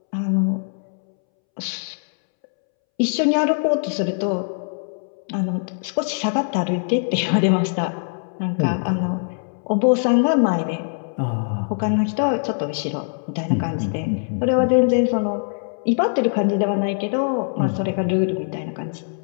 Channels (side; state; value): right; silent; 64 dB below the other